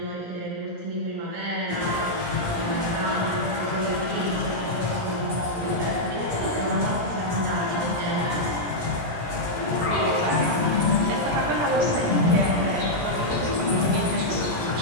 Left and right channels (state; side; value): late; left; 17 ms